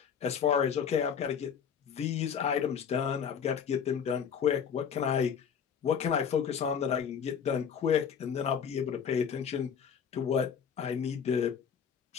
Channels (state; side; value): quieter; right; 7.4 dB